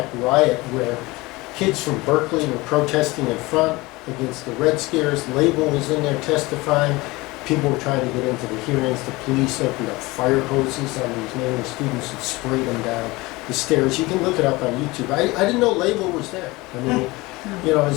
riot, where Kids from Berkeley were protesting in front against the Red Scares. Label was in there testifying. People were trying to get into the hearings. The police opened up fire hoses on these Maoist students and sprayed them down the stairs. You can look it up on YouTube. I didn't know Label was there. I mean, you know,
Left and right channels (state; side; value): quieter; right; 22.0 dB